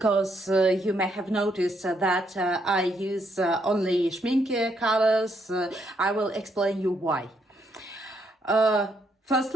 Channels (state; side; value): normal; both; correlation 0.74